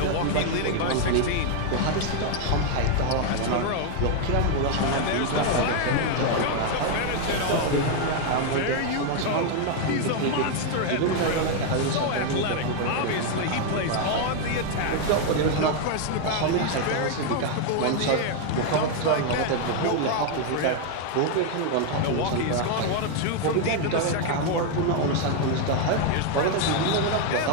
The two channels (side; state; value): both; different; correlation 0.01